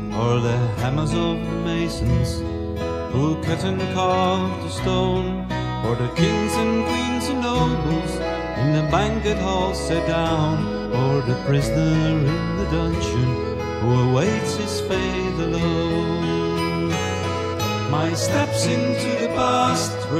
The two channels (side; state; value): both; identical; correlation 1.00